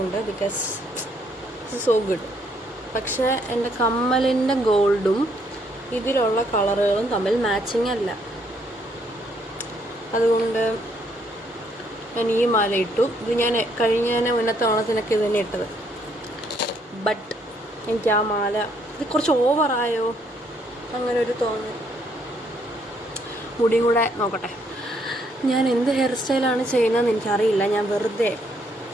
ബിക്കോസ് ഇറ്റ്സ് സോ ഗുഡ്. പക്ഷേ എൻ്റെ കമ്മലിൻ്റെ ഗോൾഡും ഇതിലുള്ള കളറുകളും തമ്മിൽ മാച്ചിങ് അല്ല. അതുകൊണ്ട് ഞാൻ ഈ മാല ഇട്ടു. ഇത് ഞാൻ മുന്നത്തെ ഓണത്തിനൊക്കെ ഇത് തന്നെ ഇട്ടത്. ബട്ട് എനിക്ക് ആ മാല ഇത് കുറച്ച് ഓവറായോ അങ്ങനെ ഒരു തോന്നൽ. മുടിയും കൂടെ നോക്കട്ടെ. ഞാൻ എന്ത് ഹെയർ സ്റ്റൈലാണ് ചെയ്യുന്നതെന്ന് എനിക്കറിയില്ല. ഞാൻ വെറുതെ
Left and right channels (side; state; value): both; normal; correlation 0.70